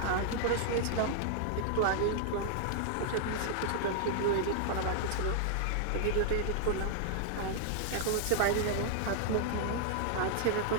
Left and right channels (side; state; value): both; different; correlation -0.01